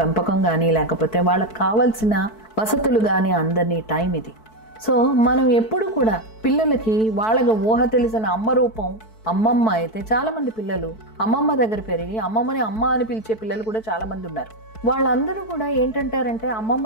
కానీ లేకపోతే వాళ్ళకి కావాల్సిన వసతులు కానీ అందరినీ టైం ఇది. సో మనం ఎప్పుడు కూడా పిల్లలకి వాళ్ళకి ఊహ తెలిసిన అమ్మ రూపం అమ్మమ్మ అయితే చాలామంది పిల్లలు అమ్మమ్మ దగ్గర పెరిగి అమ్మమ్మని అమ్మ అని పిలిచే పిల్లలు కూడా చాలామంది ఉన్నారు. వాళ్ళందరూ కూడా ఏంటంటారంటే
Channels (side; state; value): right; late; 4.6 ms